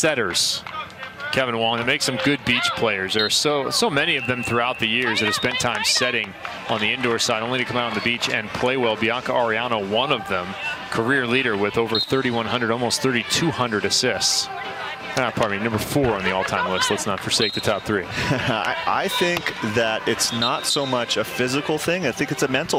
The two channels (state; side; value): identical; both; correlation 1.00